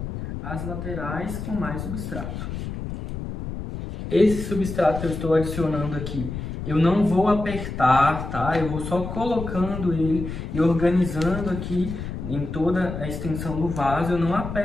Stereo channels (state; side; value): noise; left; rumble, 7 dB below the sound